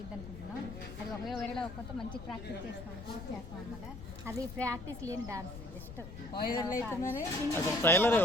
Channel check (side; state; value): left; noise; rumble, 12 dB below the sound